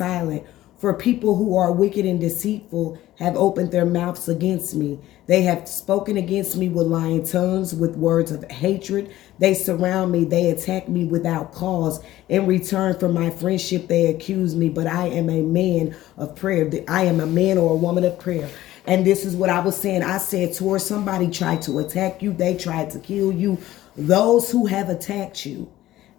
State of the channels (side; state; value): right; quieter; 14.9 dB